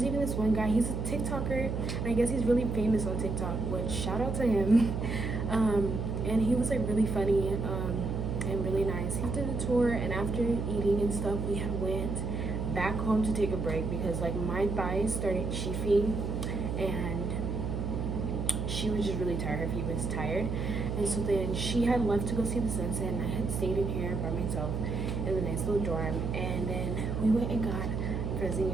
even this one guy, he's a TikToker, and I guess he's really famous on TikTok, which shout out to him. And he was like really funny and really nice. He did a tour, and after eating and stuff, we had went back home to take a break because like my thighs started chafing, and she was just really tired. Her feet was tired, and so then she had left to go see the sunset, and I had stayed in here by myself in the nice little dorm. And then we went and got frozen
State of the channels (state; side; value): noise; right; hum, 2 dB below the sound